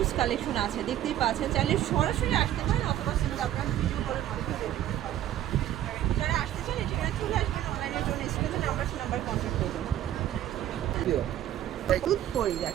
কালেকশন আছে, দেখতেই পাচ্ছেন। চাইলে সরাসরি আসতে পারেন অথবা কিন্তু আপনারা ভিডিও কলের মাধ্যমে দেখতে পারেন। যারা আসতে চান এটা চলে আসবেন, অনলাইনের জন্য স্ক্রিনে নাম্বার কন্ট্যাক্ট করবেন। দুধ পরি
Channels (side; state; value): left; quieter; 12.2 dB